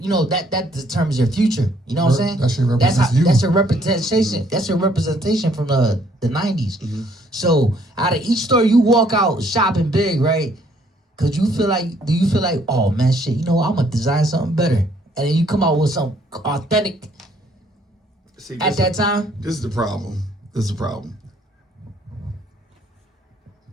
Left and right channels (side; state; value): both; normal; correlation 0.65